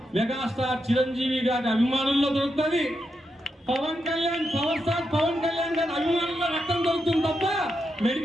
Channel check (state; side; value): normal; both; correlation 0.85